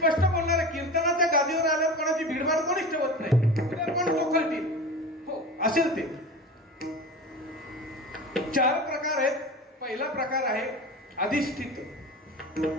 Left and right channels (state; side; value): normal; both; correlation 0.31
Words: बोलणार आहे, कीर्तनाच्या गादीवर आल्यावर कोणाची भीडभाड कोणीच ठेवत नाही. उद्या कोण चोखळतील, हो असेल ते. 4 प्रकार आहेत. पहिला प्रकार आहे अधिष्ठित,